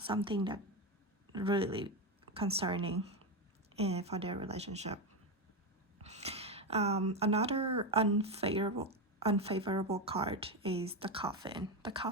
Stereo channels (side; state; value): both; normal; correlation 0.12